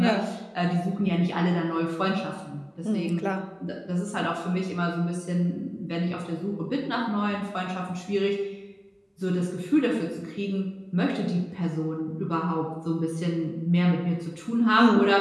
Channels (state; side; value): identical; both; correlation 1.00